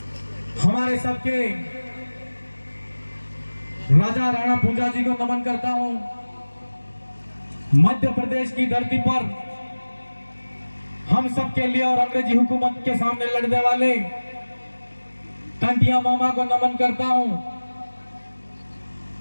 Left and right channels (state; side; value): inverted; both; correlation -1.00